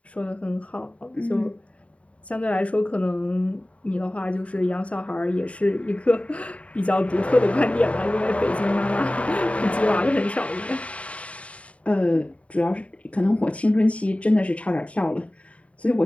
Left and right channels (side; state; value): right; late; 0.065 ms